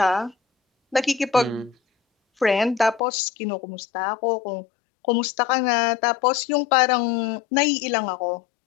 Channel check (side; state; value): right; drops out; at 3.0 s